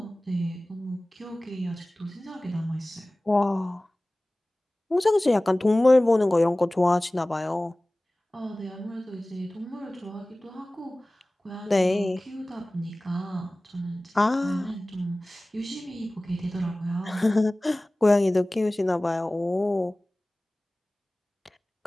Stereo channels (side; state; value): both; normal; correlation 0.98